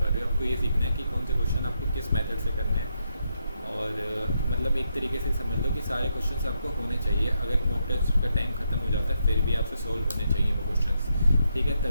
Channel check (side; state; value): both; inverted; correlation -0.80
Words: पा रहे हो, आपको ये सीखना है कि कौन से क्वेश्चन आपको किस मेथड से करने हैं। और मतलब एक तरीके से समझ लो कि सारे क्वेश्चंस आपको होने चाहिए। अगर मॉक टेस्ट का टाइम खत्म हो जाता है फिर भी आपसे सोल्व होने चाहिए वो क्वेश्चंस। ठीक है,